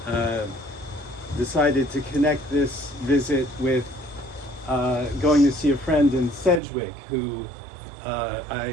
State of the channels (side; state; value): left; drops out; at 6.6 s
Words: decided to connect this visit with going to see a friend in Sedgwick who